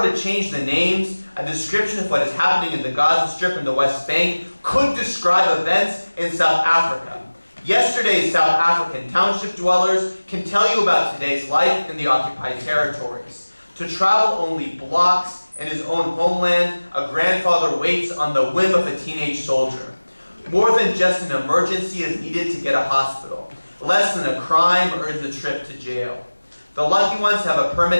to change the names, a description of what is happening in the Gaza Strip and the West Bank could describe events in South Africa. Yesterday's South African township dwellers can tell you about today's life in the occupied territories. To travel only blocks in his own homeland, a grandfather waits on the whim of a teenage soldier. More than just an emergency is needed to get a hospital. Less than a crime earns a trip to jail. The lucky ones have a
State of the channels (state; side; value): inverted; both; correlation -1.00